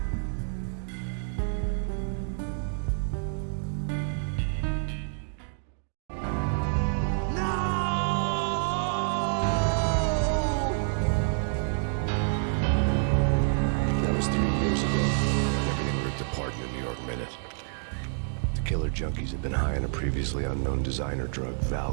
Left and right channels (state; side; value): silent; left; digital silence